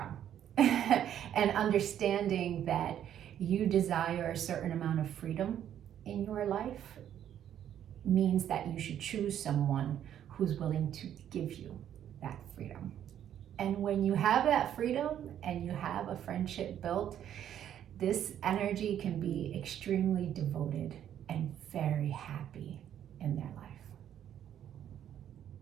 And understanding that you desire a certain amount of freedom in your life means that you should choose someone who's willing to give you that freedom. And when you have that freedom and you have a friendship built, this energy can be extremely devoted and very happy in their life.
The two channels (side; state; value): left; quieter; 10.3 dB